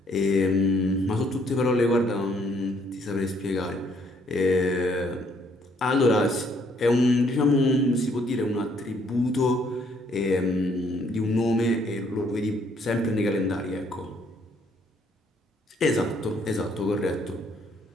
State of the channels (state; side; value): normal; both; correlation 0.67